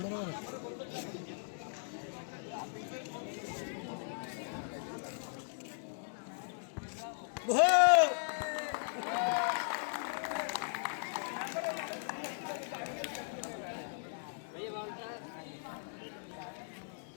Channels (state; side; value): silent; right; digital silence